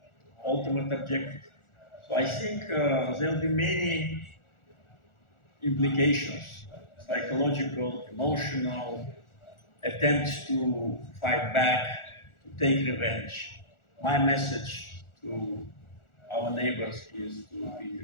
ultimate objective. So I think there will be many implications, psychological, emotional, attempts to fight back, to take revenge. My message to our neighbors is to be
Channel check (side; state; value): right; late; 1.4 ms